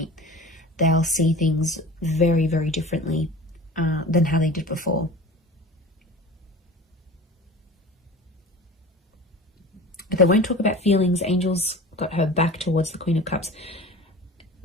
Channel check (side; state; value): both; normal; correlation 0.37